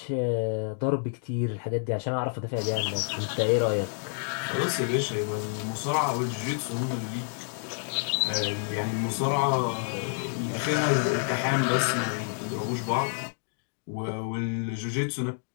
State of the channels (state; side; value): silent; right; digital silence